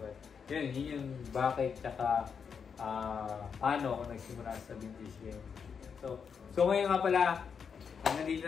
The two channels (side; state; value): right; quieter; 6.5 dB